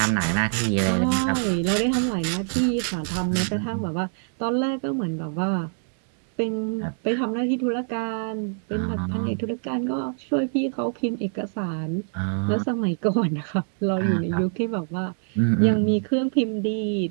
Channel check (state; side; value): silent; left; digital silence